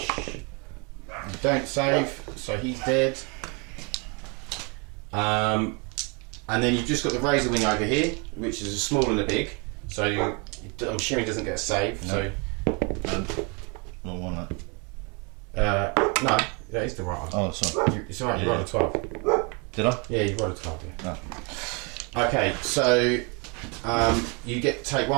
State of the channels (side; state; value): left; quieter; 32.4 dB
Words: you don't save, so he's dead. And then you've just got the Razor Wing over here, which is a small and a big. So I'm assuming he doesn't get a save. No. So Wrong one. That. no, that is the right one. Oh, sorry. It's alright. You rolled a 12. Did I? Yeah, you rolled a 12. Yeah. No. Okay, so you take